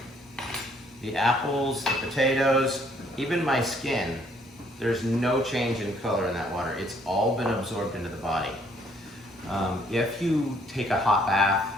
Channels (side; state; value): both; normal; correlation 0.65